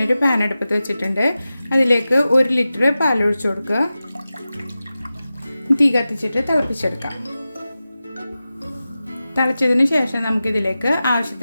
പാൻ അടുപ്പത്ത് വെച്ചിട്ടുണ്ട്. അതിലേക്ക് 1 ലിറ്റർ പാൽ ഒഴിച്ചു കൊടുക്കുക. തീ കത്തിച്ചിട്ട് തിളപ്പിച്ചെടുക്കാം. തിളച്ചതിന് ശേഷം നമുക്കിതിലേക്ക്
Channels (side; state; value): both; inverted; correlation -0.94